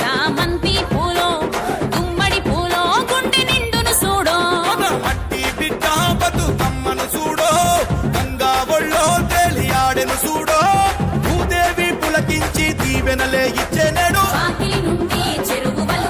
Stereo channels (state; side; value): identical; both; correlation 1.00